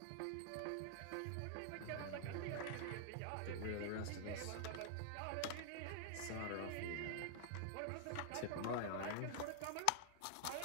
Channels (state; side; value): different; both; correlation 0.00